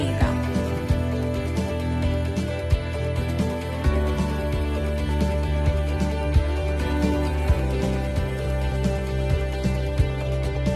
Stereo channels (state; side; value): identical; both; correlation 1.00